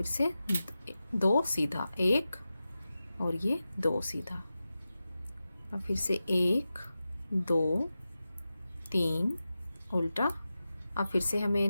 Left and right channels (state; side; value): inverted; both; correlation -0.93